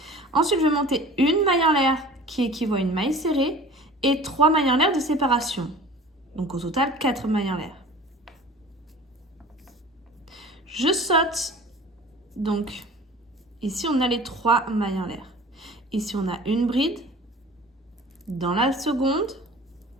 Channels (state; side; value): normal; both; correlation 0.43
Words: Ensuite, je vais monter une maille en l'air qui équivaut à une maille serrée et 3 mailles en l'air de séparation. Donc au total, 4 mailles en l'air. Je saute. Donc ici, on a les 3 mailles en l'air. Ici, on a une bride. Dans la seconde,